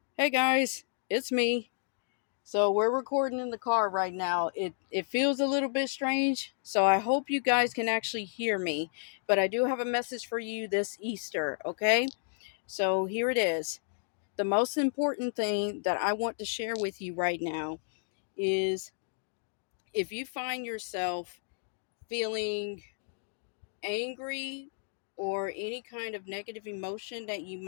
Hey guys, it's me. So we're recording in the car right now. It feels a little bit strange, so I hope you guys can actually hear me. But I do have a message for you this Easter, okay? So here it is. The most important thing that I want to share with you right now is if you find yourself feeling angry or any kind of negative emotion that you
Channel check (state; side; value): silent; right; digital silence